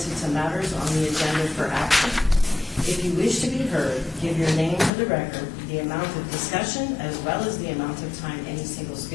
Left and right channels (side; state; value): right; drops out; at 4.9 s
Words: to matters on the agenda for action. If you wish to be heard, give your name for the record. The amount of discussion, as well as the amount of time any single